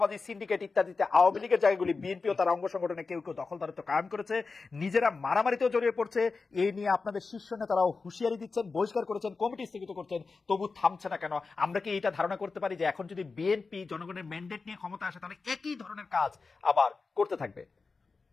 সিন্ডিকেট ইত্যাদিতে আওয়ামী লীগের জায়গাগুলি বিএনপিও তার অঙ্গ সংগঠনে কেউ কেউ দখলদারিত্ব কায়েম করেছে, নিজেরা মারামারিতেও জড়িয়ে পড়ছে। এই নিয়ে আপনাদের শীর্ষ নেতারাও হুঁশিয়ারি দিচ্ছেন, বহিষ্কার করেছেন, কমিটি স্থগিত করছেন, তবু থামছে না কেন? আমরা কি এটা ধারণা করতে পারি যে এখন যদি বিএনপি জনগণের ম্যান্ডেট নিয়ে ক্ষমতা আসে তাহলে একই ধরনের কাজ আবার করতে থাকবে,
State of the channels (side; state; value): right; quieter; 4.3 dB